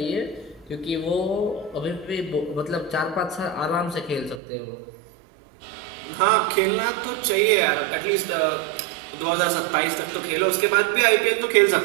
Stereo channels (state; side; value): drops out; left; at 4.4 s